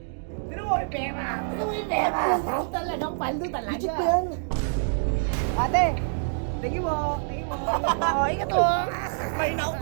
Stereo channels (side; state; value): left; silent; digital silence